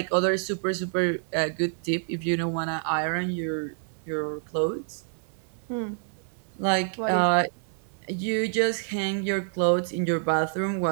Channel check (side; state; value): left; silent; 60 dB below the other